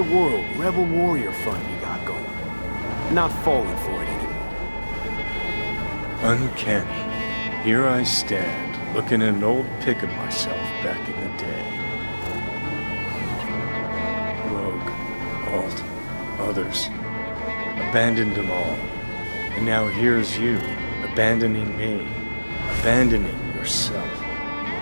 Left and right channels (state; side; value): inverted; both; correlation -1.00